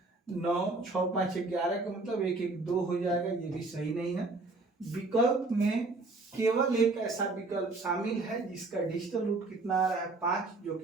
9 6 5 11 का मतलब 1 1 2 हो जाएगा, ये भी सही नहीं है। विकल्प में केवल एक ऐसा विकल्प शामिल है जिसका डिजिटल रूट कितना आ रहा है, 5, जो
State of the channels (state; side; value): quieter; left; 3.4 dB